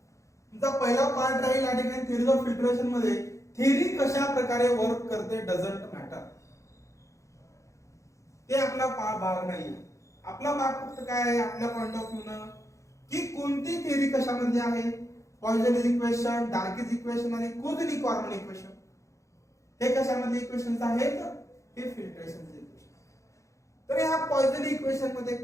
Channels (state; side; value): late; right; 0.15 ms